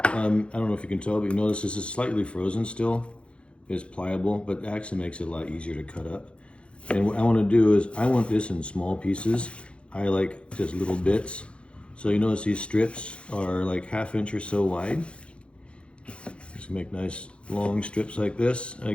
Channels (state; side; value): late; right; 0.059 ms